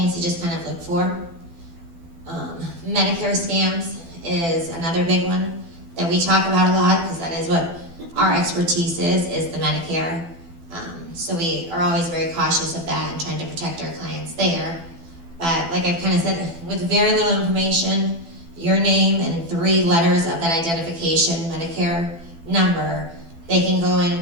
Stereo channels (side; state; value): left; late; 12 ms